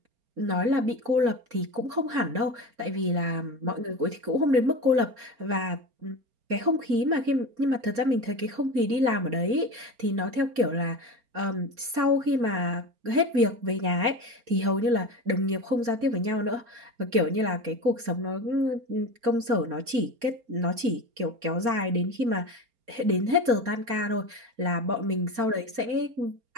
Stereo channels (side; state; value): left; late; 4.3 ms